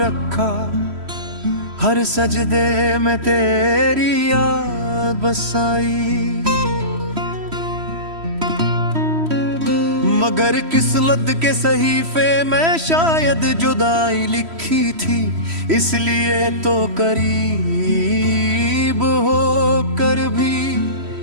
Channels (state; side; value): late; left; 3.1 ms